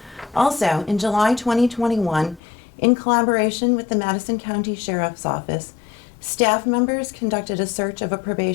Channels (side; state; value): right; drops out; at 2.4 s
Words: Also, in July 2021, in collaboration with the Madison County Sheriff's Office, staff members conducted a search of a